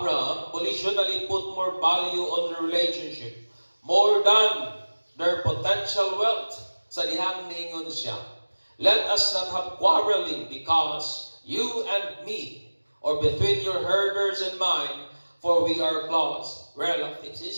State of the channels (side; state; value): both; inverted; correlation -1.00